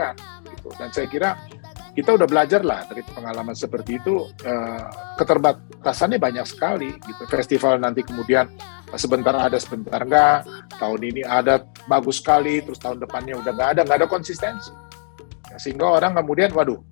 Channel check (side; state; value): right; silent; digital silence